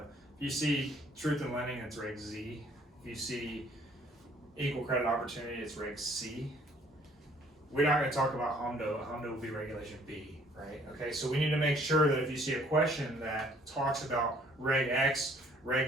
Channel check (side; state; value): both; normal; correlation 0.60